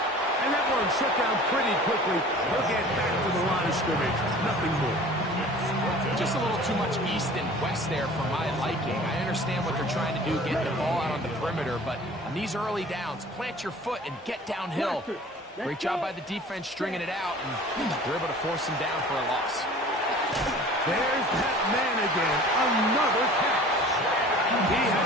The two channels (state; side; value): normal; both; correlation 0.45